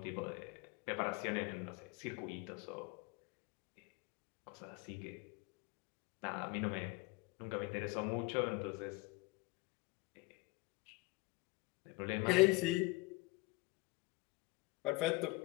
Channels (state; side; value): quieter; right; 22.6 dB